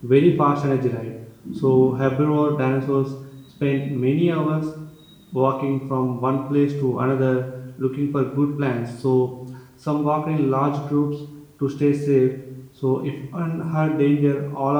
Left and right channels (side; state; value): both; identical; correlation 1.00